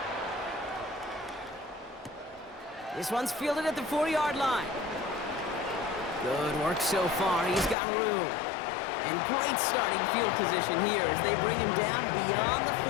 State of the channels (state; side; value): drops out; right; at 7.8 s